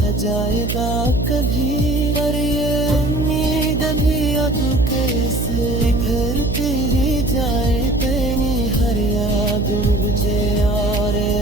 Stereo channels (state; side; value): noise; right; hum, 2 dB below the sound